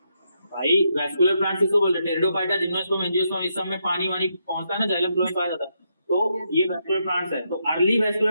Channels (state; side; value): inverted; both; correlation -0.80